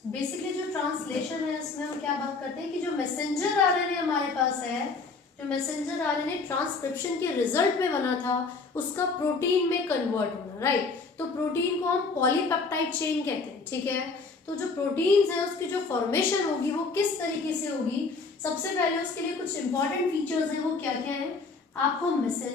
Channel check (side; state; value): right; quieter; 4.2 dB